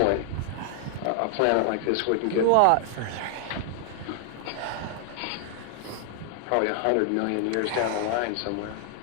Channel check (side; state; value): both; different; correlation 0.00